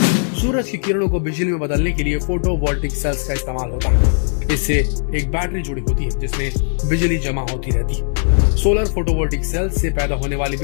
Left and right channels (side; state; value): right; silent; digital silence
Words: सूरज की किरणों को बिजली में बदलने के लिए फोटोवोल्टिक सेल्स का इस्तेमाल होता है। इससे एक बैटरी जुड़ी होती है जिसमें बिजली जमा होती रहती है। सोलर फोटोवोल्टिक सेल्स से पैदा होने वाली